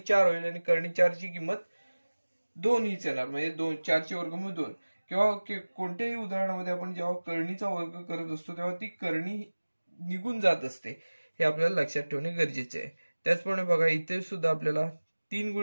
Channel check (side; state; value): both; inverted; correlation -1.00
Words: 4 होईल आणि कर्णी 4 ची किंमत 2 हीच येणार, म्हणजे 4 चे वर्गमूळ 2. किंवा कोणत्याही उदाहरणामध्ये आपण जेव्हा कर्णीचा वर्ग करत असतो तेव्हा ती कर्णी निघून जात असते, हे आपल्याला लक्षात ठेवणे गरजेचे आहे. त्याचप्रमाणे बघा इथे सुद्धा आपल्याला 3